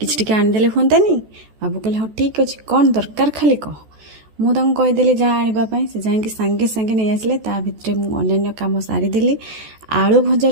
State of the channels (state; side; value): late; left; 14 ms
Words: कि आनीदे हुंतानी। बाबू कहले हाँ ठीक अच्छे कौन दरकार खाली कह। मुझे कहीदेली जहाँ आने से जाकि सांगे सांगे नहीं आसिले ता भितर मुझे कम सारीदेली। आलू